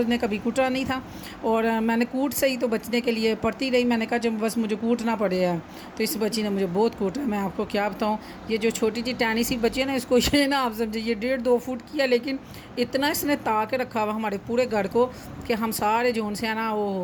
نے کبھی کوٹا نہیں تھا، اور میں نے کوٹ سے ہی تو بچنے کے لیے پڑھتی رہی، میں نے کہا جب بس مجھے کوٹنا پڑے ہے، تو اس بچی نے مجھے بہت کوٹا، میں آپ کو کیا بتاؤں، یہ جو چھوٹی سی ٹینی سی بچی ہے نا، اس کو یہ نا آپ سمجھے یہ 1.5 2 فٹ کی ہے، لیکن اتنا اس نے تا کے رکھا ہوا ہمارے پورے گھر کو کہ ہم سارے جو ان سے ہیں نا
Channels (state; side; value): identical; both; correlation 1.00